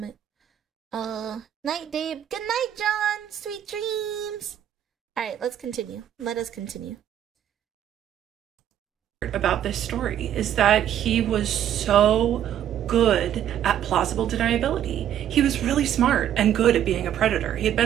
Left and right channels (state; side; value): quieter; left; 10.6 dB